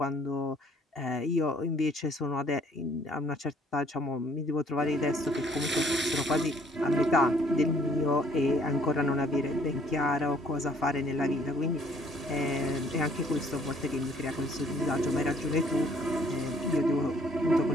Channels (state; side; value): normal; both; correlation 0.61